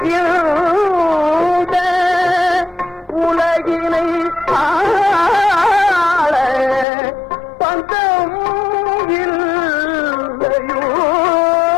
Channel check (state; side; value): drops out; right; at 6.9 s